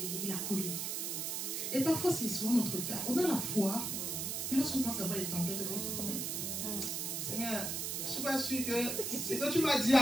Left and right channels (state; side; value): noise; right; hiss, 2 dB below the sound